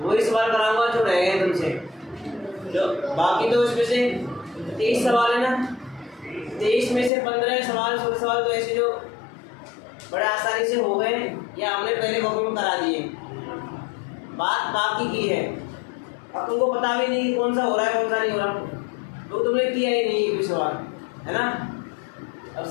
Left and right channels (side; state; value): right; drops out; at 7.1 s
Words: सवाल कराऊंगा जो रह गए तुमसे। जो बाकी तो इसमें से 23 सवाल है ना, 23 में से 15 सवाल 16 सवाल तो ऐसे जो बड़े आसानी से हो गए या हमने पहले कॉपी में करा दिए, बात बाकी की है। अब तुमको पता भी नहीं कि कौन सा हो रहा है कौन सा नहीं हो रहा, तो तुमने किया ही नहीं एक भी सवाल, है ना। अब